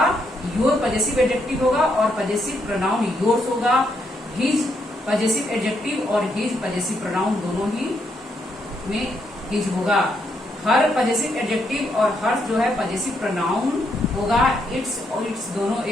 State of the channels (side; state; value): both; normal; correlation 0.77